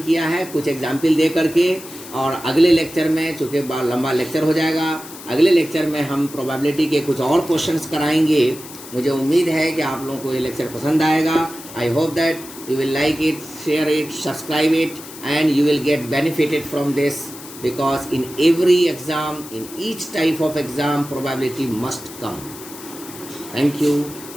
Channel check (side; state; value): left; noise; hiss, 15 dB below the sound